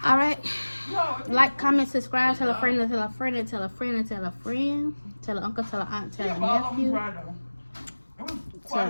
All right. No. Like, comment, subscribe, tell a friend, tell a friend, tell a friend, tell a friend, tell an uncle, tell an aunt, tell a All of them nephew. dry though. It was quite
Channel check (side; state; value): both; inverted; correlation -1.00